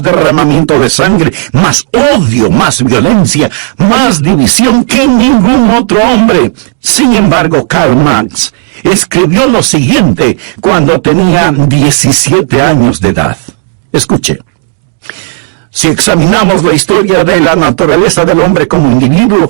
derramamiento de sangre, más odio, más violencia, más división que ningún otro hombre. Sin embargo, Karl Marx escribió lo siguiente cuando tenía 17 años de edad. Escuche. Si examinamos la historia de la naturaleza del hombre como individuo,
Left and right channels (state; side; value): silent; left; digital silence